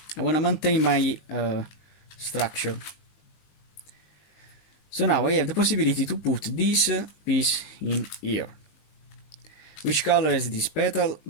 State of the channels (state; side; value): late; right; 19 ms